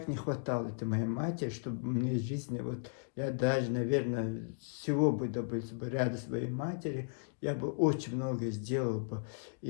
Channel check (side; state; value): right; silent; digital silence